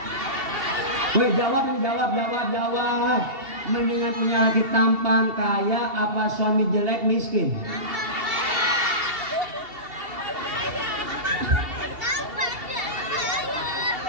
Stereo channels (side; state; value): left; late; 2.7 ms